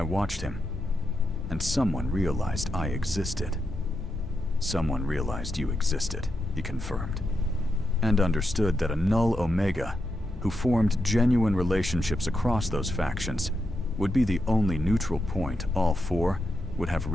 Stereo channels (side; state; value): both; normal; correlation 0.85